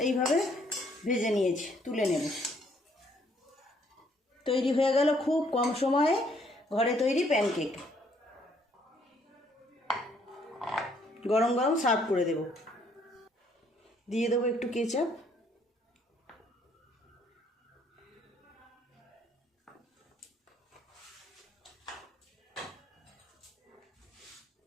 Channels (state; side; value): normal; both; correlation 0.66